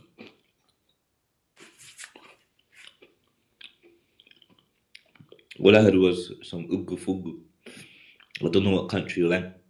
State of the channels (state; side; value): identical; both; correlation 1.00